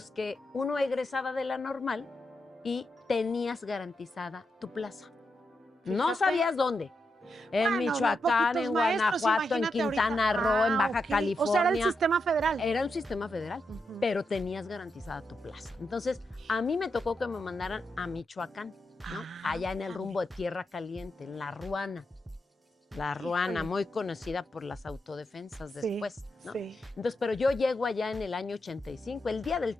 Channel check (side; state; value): both; normal; correlation 0.85